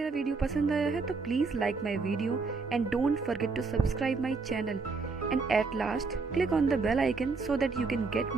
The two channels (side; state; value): left; quieter; 4.3 dB